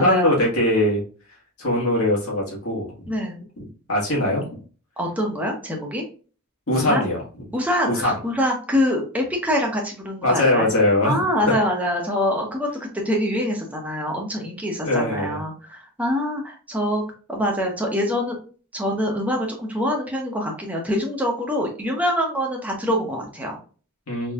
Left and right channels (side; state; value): both; normal; correlation 0.18